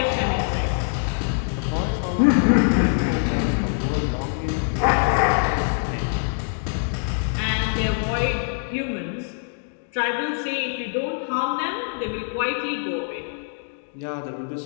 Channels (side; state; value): right; silent; digital silence